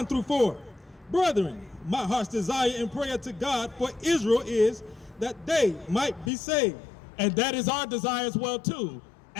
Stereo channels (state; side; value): drops out; right; at 6.3 s